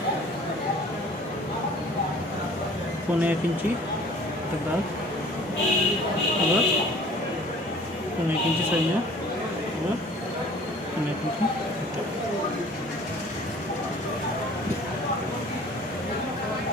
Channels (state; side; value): normal; both; correlation 0.49